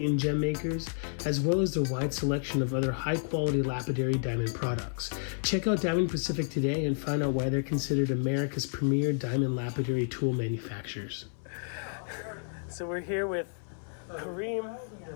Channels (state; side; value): silent; right; 57 dB below the other